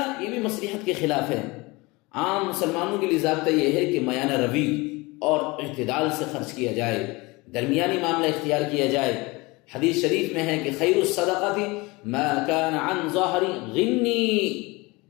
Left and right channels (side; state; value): right; quieter; 24.0 dB